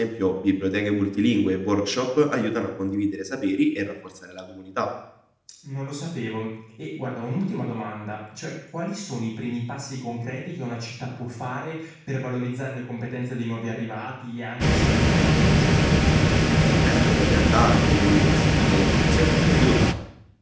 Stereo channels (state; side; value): identical; both; correlation 1.00